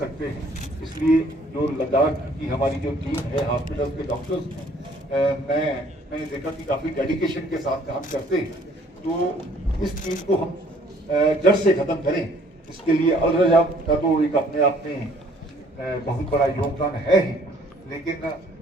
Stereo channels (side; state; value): both; normal; correlation 0.59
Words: हैं। इसलिए जो लद्दाख की हमारी जो टीम है, हॉस्पिटल के डॉक्टर्स हैं, मैंने देखा कि काफ़ी डेडिकेशन के साथ काम करते हैं। तो इस चीज़ को हम जड़ से ख़त्म करें, इसके लिए अल रजा का तो एक अपने आप में बहुत बड़ा योगदान है ही, लेकिन